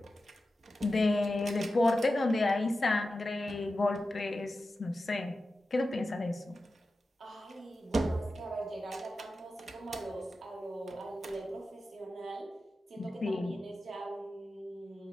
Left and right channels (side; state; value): both; normal; correlation 0.93